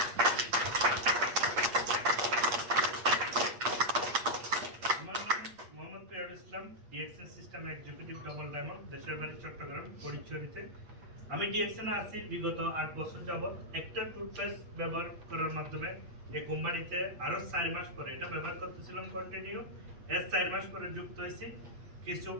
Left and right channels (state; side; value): late; left; 8.5 ms